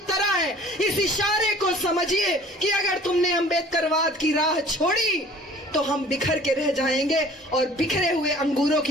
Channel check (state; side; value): normal; both; correlation 0.49